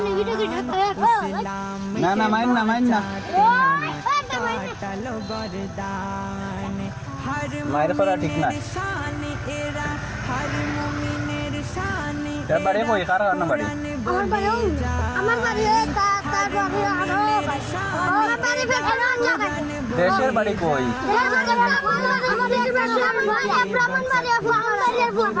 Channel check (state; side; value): identical; both; correlation 1.00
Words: না না মাইন না কাটালো গরদান হর মায়ের করা ঠিক না শান এরা হর মুমিনের শান তার বাড়ি কই কার না বাড়ি আমার বাড়ি তার বাড়ি আরো আমার বাড়ি বেখানা জায়গায় দেশের বাড়ি কই